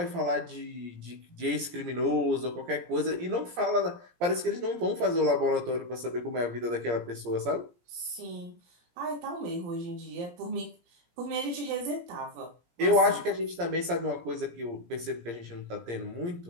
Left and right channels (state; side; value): late; left; 17 ms